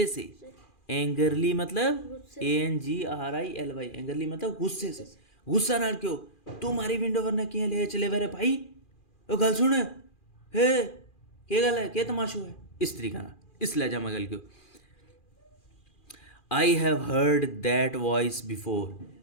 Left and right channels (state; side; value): late; right; 2.4 ms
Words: से, एंगरली मतलब ANGRILY, एंगरली मतलब गुस्से से, गुस्सा ना क्यों? तुम्हारी विंडो पर ना क्या ले चले वे भाई, ओ गल सुन, हे के गल है, के तमाशो है, इस तरीका ना, इस लहजा में गल क्यों। I have heard that voice before,